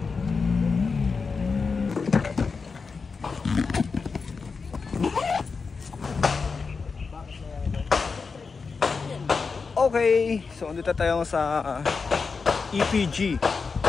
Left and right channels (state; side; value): quieter; right; 4.9 dB